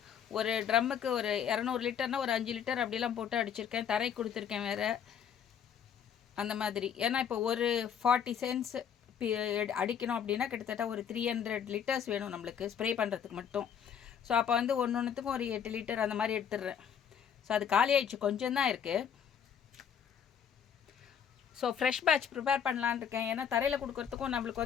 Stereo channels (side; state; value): right; quieter; 8.1 dB